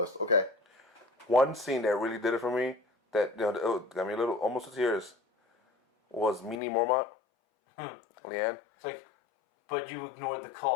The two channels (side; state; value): right; drops out; at 6.6 s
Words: Okay. One scene that really did it for me, that got me a little almost to tears, was Mini Mormont. Leanne. It's like, but you ignored the